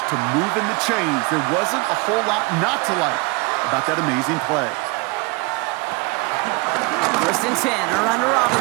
to moving the chains, there wasn't a whole lot not to like about that amazing play. 1st and 10, around to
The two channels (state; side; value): quieter; left; 27.2 dB